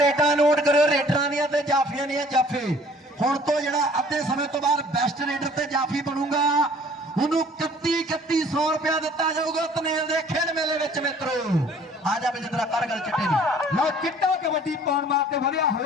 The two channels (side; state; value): both; normal; correlation 0.54